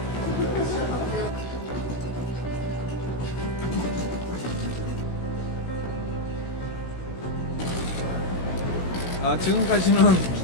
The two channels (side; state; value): right; late; 16 ms